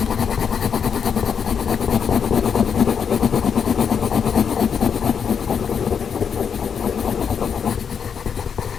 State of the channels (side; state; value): right; quieter; 7.0 dB